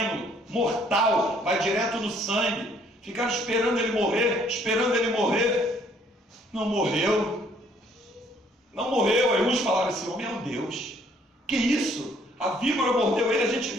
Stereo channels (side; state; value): both; normal; correlation 0.63